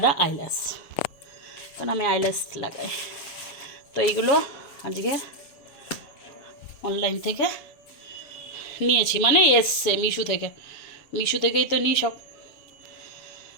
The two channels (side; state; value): right; late; 7.2 ms